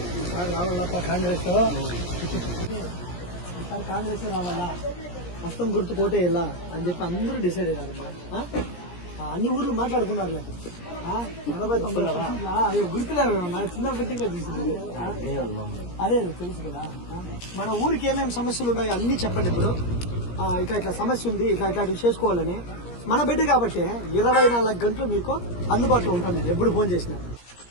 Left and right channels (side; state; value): right; late; 17 ms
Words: కాంగ్రెస్ ఈసారి కాంగ్రెస్ రావాలా మొత్తం గుర్తు కోటేయాలా అని చెప్పి అందరూ డిసైడ్ అయ్యారమ్మా. అన్ని ఊర్లు మాట్లాడుకున్నారులే. 80-90 అయ్యో గుర్తులేమన్నా చిన్న పెట్టిగా చూసింది. అదే తెలుసు కదా. మన ఊరికి ఏమేమి సమస్యలు ఉన్నాయో అన్ని చెప్పండి. ఇప్పుడు ఇట్లా సమస్య ఉంది, ఇట్లాంటివి చేసుకోవాలని మన బిడ్డ కాబట్టి 24 గంటలు మీకు అందుబాటులో ఉంటాను నేను ఎప్పుడు ఫోన్ చేసినా.